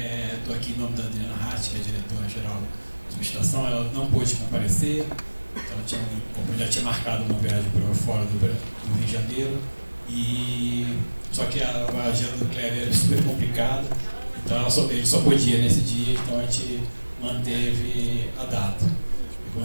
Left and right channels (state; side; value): inverted; both; correlation -1.00